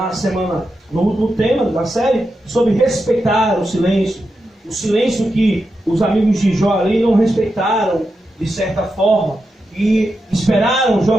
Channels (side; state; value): both; normal; correlation 0.88